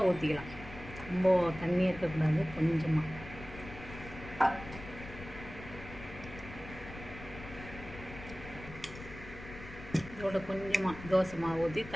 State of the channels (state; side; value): noise; left; rumble, 13 dB below the sound